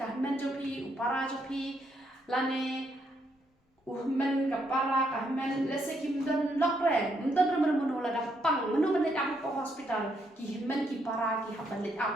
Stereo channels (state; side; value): normal; both; correlation 0.75